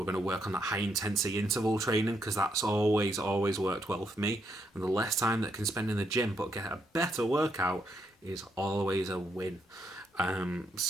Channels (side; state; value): both; normal; correlation 0.77